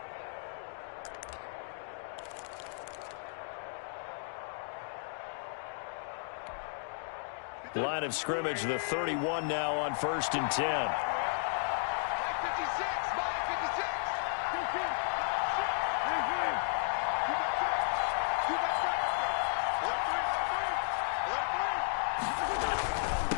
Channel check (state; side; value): silent; right; digital silence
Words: Line of scrimmage, the 31 now on 1st and 10.